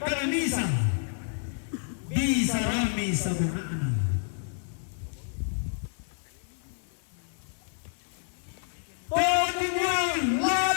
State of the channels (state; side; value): silent; right; 58 dB below the other